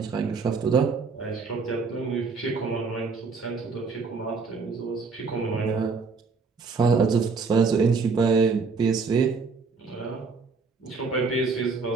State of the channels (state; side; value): quieter; left; 4.6 dB